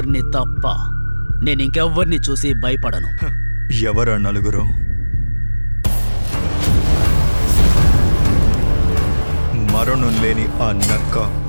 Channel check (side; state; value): both; inverted; correlation -1.00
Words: తప్ప. నేను ఇంకెవ్వరిని చూసి భయపడను. ఎవరా నలుగురు? మరణం లేని ఆ నక్క,